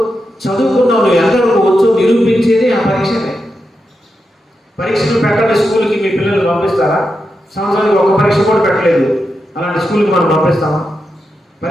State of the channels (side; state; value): both; normal; correlation 0.87